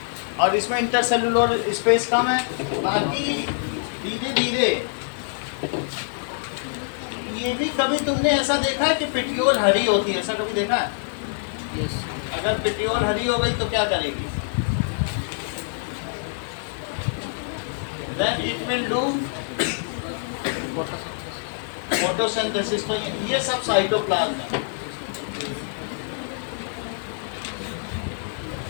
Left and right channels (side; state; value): right; silent; digital silence